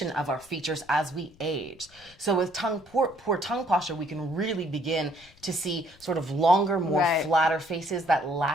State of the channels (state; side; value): noise; left; rumble, 27 dB below the sound